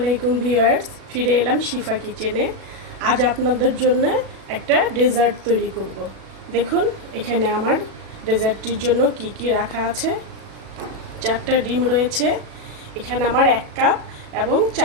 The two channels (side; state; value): left; late; 37 ms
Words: ভিউয়ার্স, ফিরে এলাম শিফা কিচেনে। আজ আপনাদের জন্য একটা ডেজার্ট তৈরি করব। দেখুন এখানে আমার ডেজার্টটির জন্য কি কি রাখা আছে। 4টা ডিম রয়েছে, এখানে আমার 1 কাপ এবং